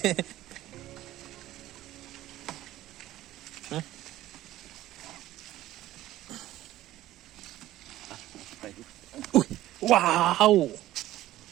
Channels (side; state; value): left; quieter; 14.9 dB